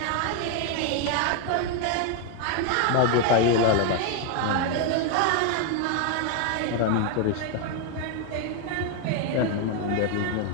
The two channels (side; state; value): both; different; correlation 0.01